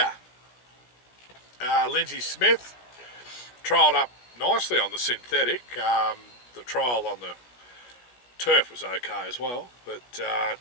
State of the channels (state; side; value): late; right; 17 ms